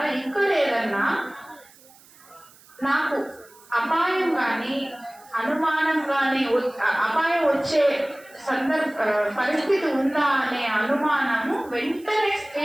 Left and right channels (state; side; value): noise; right; hiss, 26 dB below the sound